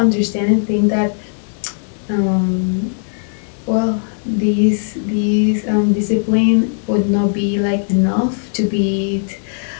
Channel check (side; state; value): right; silent; digital silence